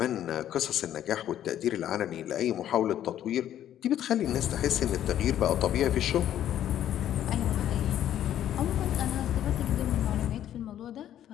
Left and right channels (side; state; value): right; quieter; 11.3 dB